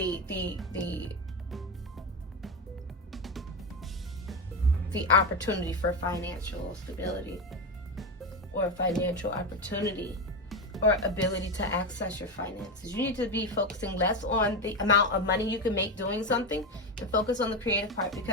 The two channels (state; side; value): normal; both; correlation 0.15